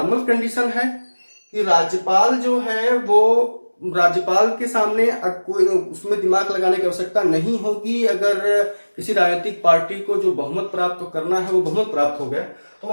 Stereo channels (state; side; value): inverted; both; correlation -1.00